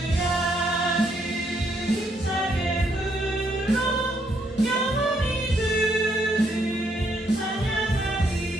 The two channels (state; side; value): normal; both; correlation 0.73